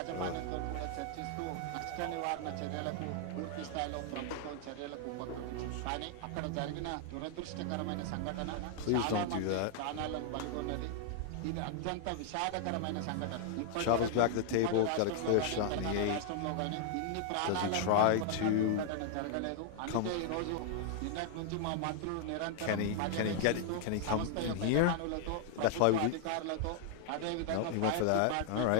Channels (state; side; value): different; both; correlation -0.01